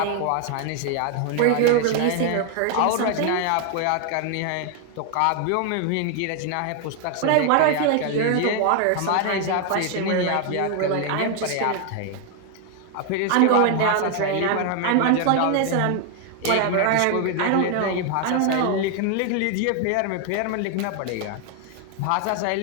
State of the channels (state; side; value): different; both; correlation 0.00